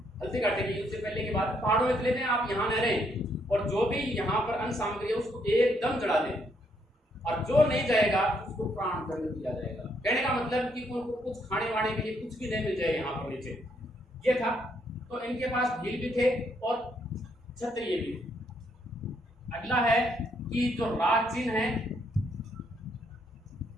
हल्दी घाटी के युद्ध से पहले के बाद पहाड़ों में चले जाएं, आप यहाँ न रहें और जो भी यहाँ पर अन्न सामग्री है उसको एकदम जला दें और जो नहीं जाएगा उसको प्राण दंड दिया जाएगा। कहने का मतलब कि उनको कुछ खाने वाने के लिए कुछ भी नहीं मिल जाए यहाँ पर नीचे, ये था। तो इनके पास भील भी थे और क्षत्रिय भी। अगला है कि जो राज चिन्ह है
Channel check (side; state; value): both; normal; correlation 0.73